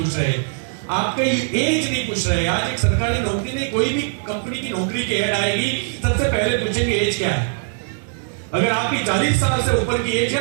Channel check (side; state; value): left; silent; digital silence